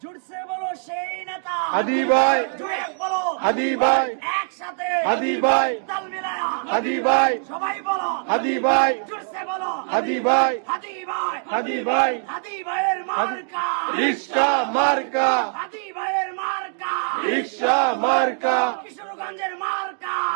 জুড়ছে বলো সেই নেতা হাদি ভাই, জুড়ে বলো হাদি ভাই, একসাথে হাদি ভাই, তাল মিলায়া হাদি ভাই, সবাই বলো হাদি ভাই, জুড়ছে বলো হাদি ভাই, হাদি ভাই, হাদি ভাই, হাদি ভাইয়ের মার্কা রিক্সা মার্কা, হাদি ভাইয়ের মার্কা রিক্সা মার্কা, কিশোরগঞ্জের মার্কা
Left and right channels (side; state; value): left; silent; 60 dB below the other